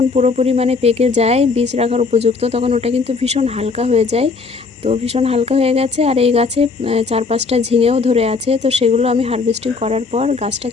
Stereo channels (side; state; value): right; quieter; 4.5 dB